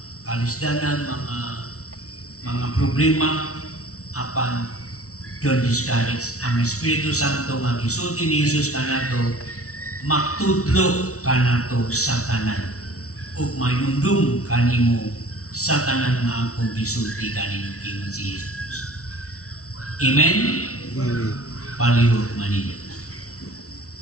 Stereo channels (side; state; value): right; late; 0.64 ms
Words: kalisdanan, mga problema, apan don't discourage. Ang Espiritu Santo nga gisulti ni Jesus kanato, magtudlo kanato sa tanan ug mainumdum kanimo sa tanan nga akong gisulti kanimo kingon si Jesus. Amen? Amen. Palihog manila.